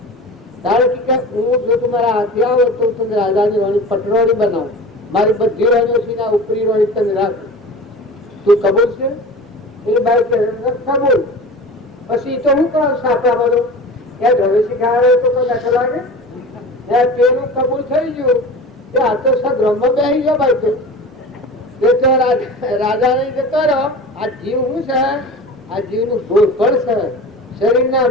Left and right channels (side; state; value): both; normal; correlation 0.35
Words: તારે કે હું જો તમારા હાથે આવો તો તમે રાજાની વાણી પટરોણી બનાવો, મારી બધી રાણીઓ છે ને ઉપરી રાણી તમે રાખો, તું કબૂલ છે? એટલે ભાઈ કે કબૂલ. પછી તો હું કહું સાપડા બધું ત્યાં ઘરે શીખાડે તો કોઈ લખ લાગે પેલું કબૂલ થઈ ગયું કે આ તો સગ્રહમાં બેસી ગયો ભાઈ. તો રાજા ને જતો રહ્યો. આ જીવ શું છે? આ જીવ નું ભોળપણ છે, શરીરના